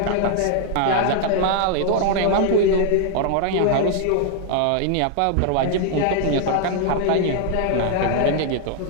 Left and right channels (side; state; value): both; different; correlation 0.00